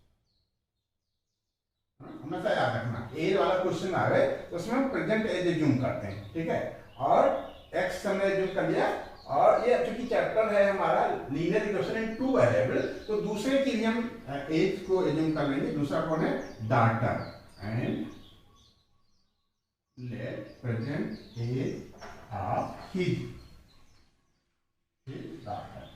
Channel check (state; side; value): identical; both; correlation 1.00